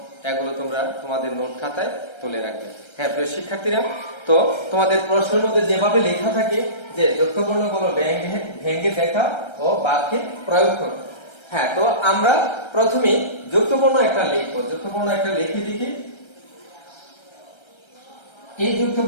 এগুলো তোমরা তোমাদের নোট খাতায় তুলে রাখবে। হ্যাঁ প্রিয় শিক্ষার্থীরা, তো তোমাদের প্রশ্নের মধ্যে যেভাবে লেখা থাকে যে যুক্ত বর্ণগুলো ভেঙে দেখা ও বাক্যে প্রয়োগ করো। হ্যাঁ, তো আমরা প্রথমে যুক্ত বর্ণ একটা লিখবো। যুক্ত বর্ণ একটা লিখে দেখি। এই যুক্ত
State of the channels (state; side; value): late; right; 1.3 ms